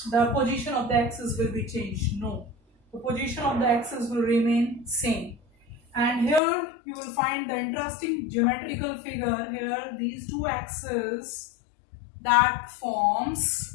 the position of the axis will be changed. No, the position of the axis will remain same. And here you will find the interesting geometrical figure here, these two axes that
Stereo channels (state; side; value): drops out; right; at 6.4 s